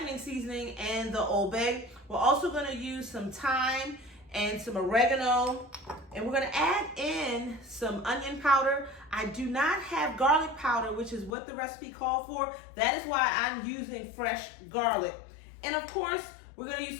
seasoning and the Old Bay. We're also going to use some thyme and some oregano, and we're going to add in some onion powder. I do not have garlic powder, which is what the recipe called for. That is why I'm using fresh garlic. And of course, we're going to use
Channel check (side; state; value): right; drops out; at 11.3 s